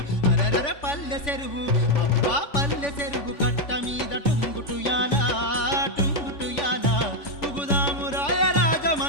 అరరర పల్లె చెరువు అబ్బా పల్లె చెరువు కట్ట మీద టుంగుటుయాలా టుంగుటుయాలా పుగుదాము రాయ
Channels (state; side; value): late; right; 3.5 ms